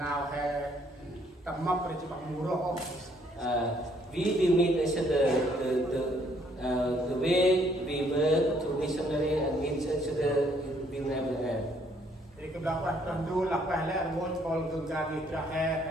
hè tầm mập rồi chỉ bằng mù rô. We will meet each other the way we work to missionary and meet each other will never end. Thì cái đó là tuần du là phải là muốn còn thường ra đi ra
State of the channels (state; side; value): normal; both; correlation 0.66